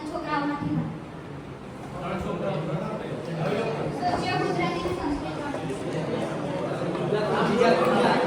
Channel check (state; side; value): identical; both; correlation 1.00